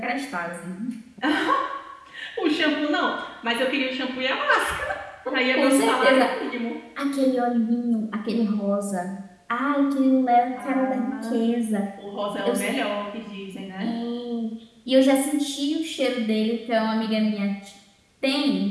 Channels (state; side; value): identical; both; correlation 1.00